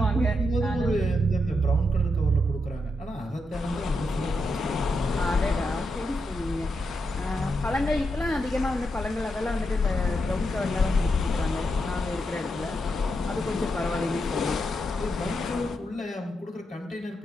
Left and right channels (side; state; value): both; normal; correlation 0.83